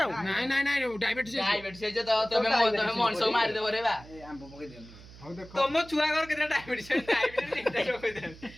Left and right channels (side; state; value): right; noise; hum, 19 dB below the sound